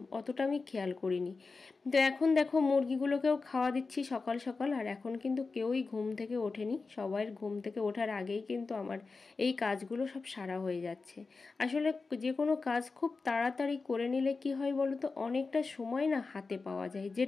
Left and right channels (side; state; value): right; quieter; 4.2 dB